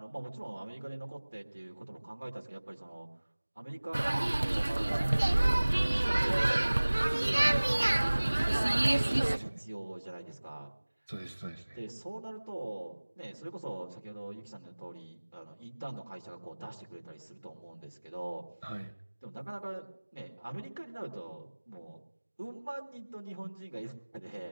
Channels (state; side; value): inverted; both; correlation -1.00